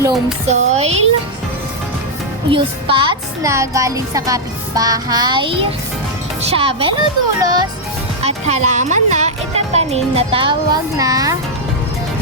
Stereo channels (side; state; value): both; normal; correlation -0.02